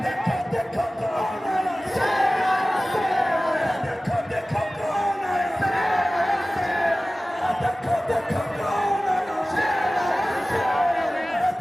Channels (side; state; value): both; normal; correlation 0.97